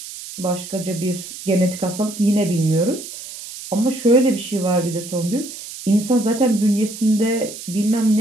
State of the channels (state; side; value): noise; right; hiss, 12 dB below the sound